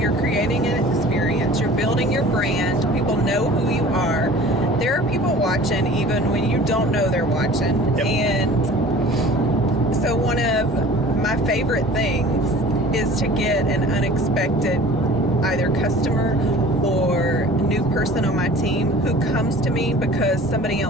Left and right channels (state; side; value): normal; both; correlation 0.44